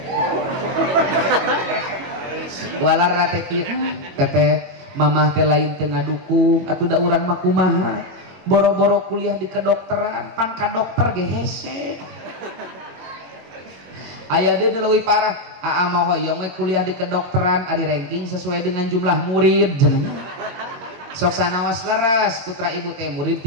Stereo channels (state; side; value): late; left; 22 ms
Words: Walar rate kieu, "Teteh, mamah teh lain teu ngadukung, atuh da urang mah kumaha? Boro-boro kuliah di kedokteran, pan ka dokter ge hese." Aya deui leuwih parah, aa mah hoyong we kuliah di kedokteran ari ranking sesuai dengan jumlah murid jenengan. Sok sanaos leres putra ibu teh murid